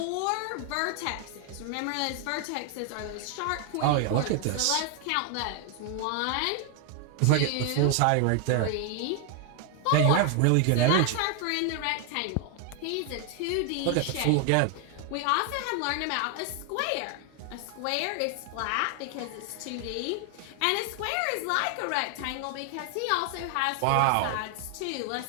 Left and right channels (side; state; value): both; different; correlation 0.00